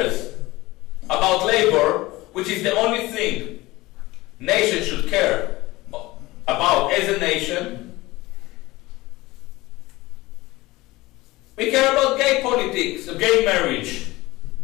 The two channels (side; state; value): right; quieter; 19.9 dB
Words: about labor, which is the only thing nations should care about as a nation, we care about gay politics, gay marriage.